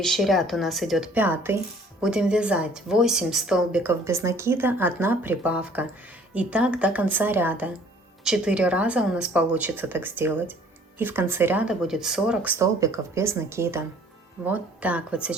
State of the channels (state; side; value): normal; both; correlation 0.56